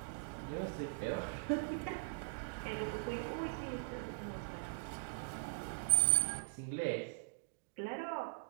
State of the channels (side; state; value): left; silent; digital silence